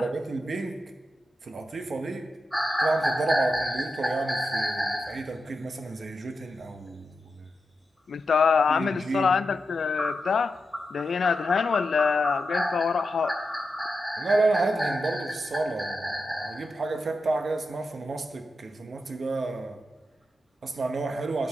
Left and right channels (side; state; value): both; normal; correlation 0.88